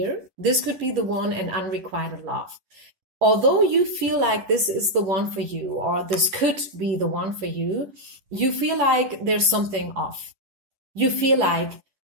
this could be the one, and unrequited love. Although you feel like this is the one for you, or this could be the one for you, you feel like there's something off. You feel like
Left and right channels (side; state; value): left; late; 10 ms